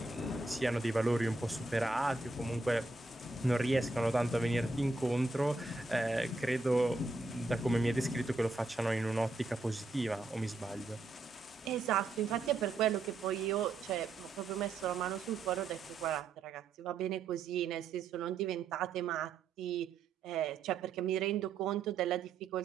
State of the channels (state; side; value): quieter; left; 3.5 dB